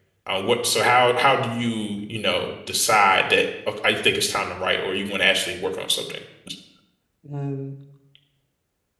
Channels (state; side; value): identical; both; correlation 1.00